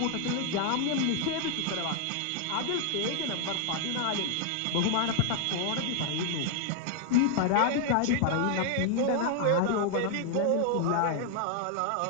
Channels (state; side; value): different; both; correlation 0.00